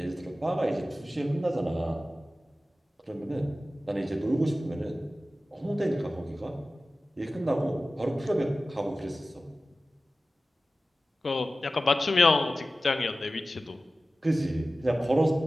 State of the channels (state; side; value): normal; both; correlation 0.95